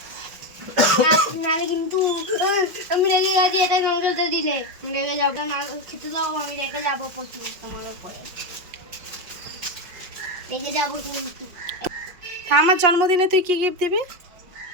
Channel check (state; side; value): late; left; 5.6 ms